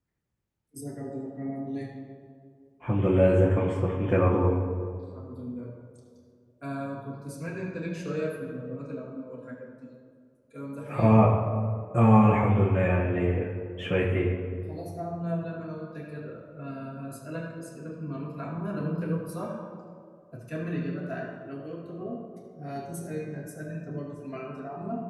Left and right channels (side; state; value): both; identical; correlation 1.00